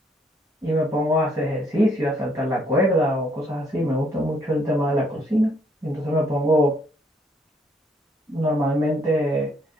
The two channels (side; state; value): both; normal; correlation 0.68